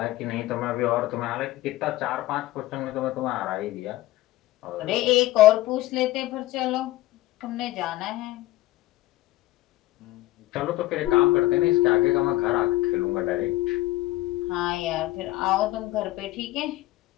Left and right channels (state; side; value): quieter; right; 16.9 dB